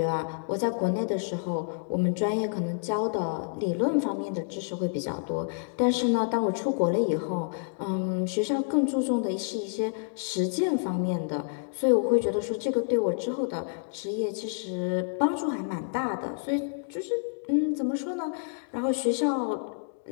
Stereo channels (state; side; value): silent; right; digital silence